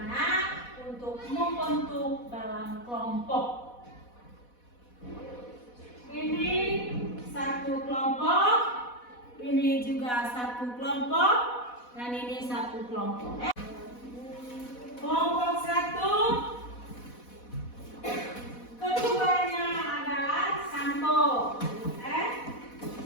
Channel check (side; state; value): right; late; 4.1 ms